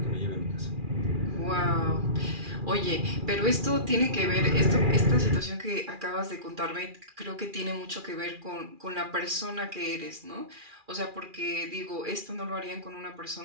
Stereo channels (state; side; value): late; left; 2.4 ms